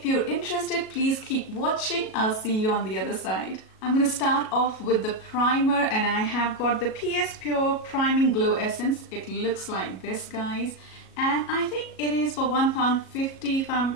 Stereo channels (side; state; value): right; late; 37 ms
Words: you're interested, please keep watching. I'll see you on the other side. I'm going to start off with the primer and I have got the PS Pure Priming Glow Essence. It looks like this, guys, and I think it is for £1.50 if